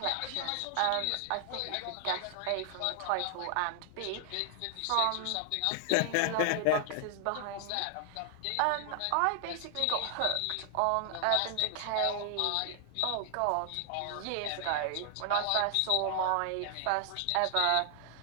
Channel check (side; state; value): both; different; correlation 0.00